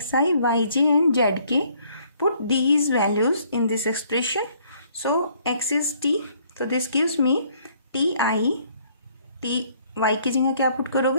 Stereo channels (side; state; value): both; inverted; correlation -0.63